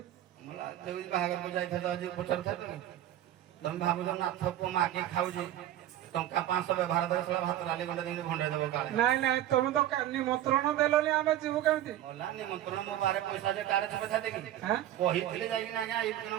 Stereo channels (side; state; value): left; quieter; 12.8 dB